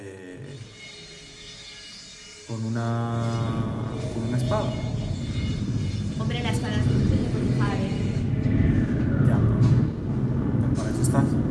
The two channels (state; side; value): identical; both; correlation 1.00